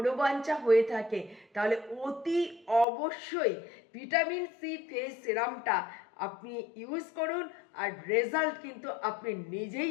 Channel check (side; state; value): right; drops out; at 2.9 s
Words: হয়ে থাকে, তাহলে অতি অবশ্যই ভিটামিন সি ফেস সিরামটা আপনি ইউজ করুন, আর রেজাল্ট কিন্তু আপনি